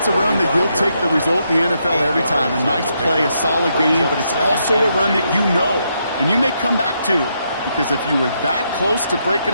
a run that you'll take the result in the NFL every time. A nice play, a solid game, but it's also a run that you know, and you may come back to, because if you were that close to breaking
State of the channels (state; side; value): inverted; both; correlation -0.79